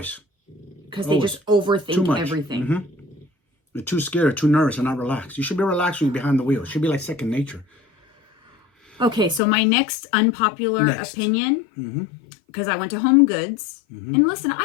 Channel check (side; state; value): right; drops out; at 9.4 s